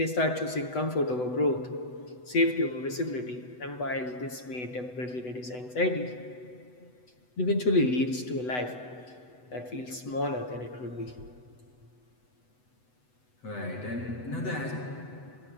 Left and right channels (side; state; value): right; late; 8.0 ms